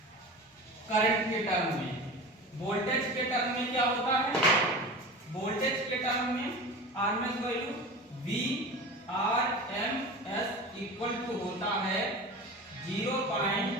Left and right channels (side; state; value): both; normal; correlation 0.32